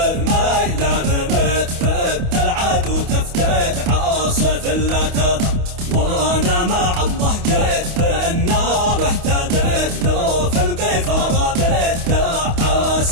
رميت فت العدو تفتت عاصف لا تضر. وانا مع الله جيت بالنار اهتديت لو في القيفر بيت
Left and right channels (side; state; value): left; late; 28 ms